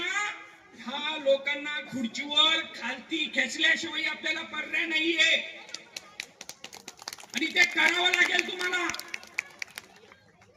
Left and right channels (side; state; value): both; identical; correlation 1.00